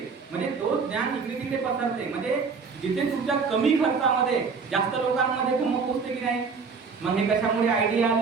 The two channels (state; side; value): quieter; left; 5.2 dB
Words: म्हणजे तो ज्ञान इकडे तिकडे पसरते. म्हणजे जिथे तुमच्या कमी खर्चामध्ये जास्त लोकांमध्ये धम्म पोहोचते की नाही. मग हे कशामुळे आयडिया